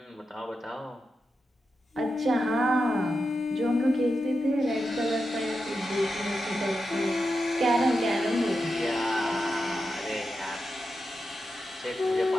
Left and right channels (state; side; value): normal; both; correlation 0.89